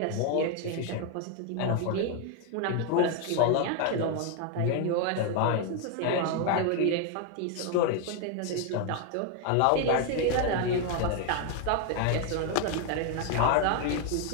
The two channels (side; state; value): both; different; correlation 0.01